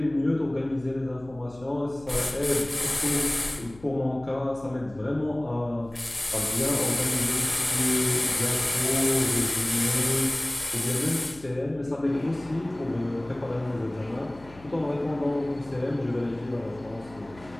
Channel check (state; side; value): noise; left; hum, 21 dB below the sound